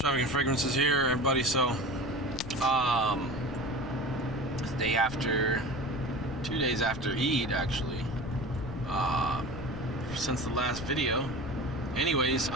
Fragrances here, everybody. So, it's day after, 2 days after Eid, actually, since the last video. Anyways,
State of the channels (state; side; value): noise; left; rumble, 11 dB below the sound